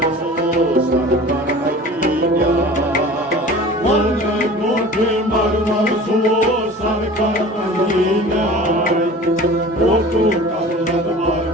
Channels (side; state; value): both; normal; correlation 0.41